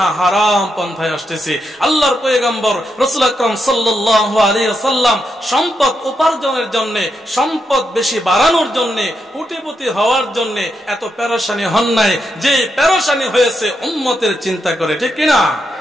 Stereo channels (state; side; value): normal; both; correlation 0.83